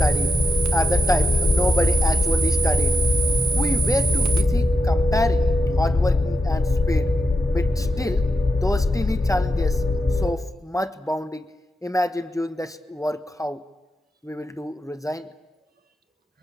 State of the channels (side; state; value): both; normal; correlation 0.88